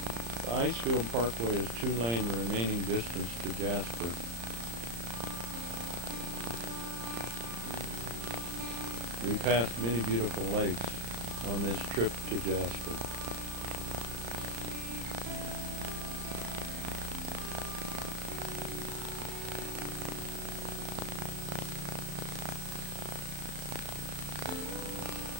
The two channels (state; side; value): late; left; 35 ms